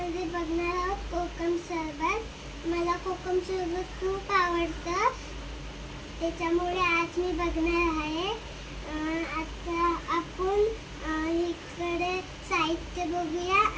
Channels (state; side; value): identical; both; correlation 1.00